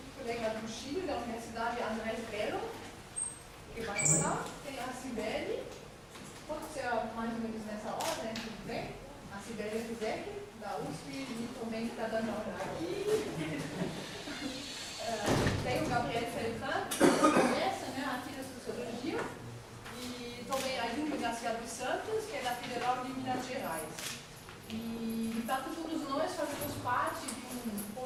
colega do Chile, da Universidade Andrés Bello, que vai falar. Tem a Cibele, pode ser mais ou menos nessa ordem, tudo bem? A Cibele Rizek, da USP, e também está dando aula aqui. Tem o Gabriel Feltran, que conhece, aqui da Sociologia, e também a Júlia Garcia dos Santos, que é da Federal de Minas Gerais. E, tanto todos nós fazemos parte de um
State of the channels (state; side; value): identical; both; correlation 1.00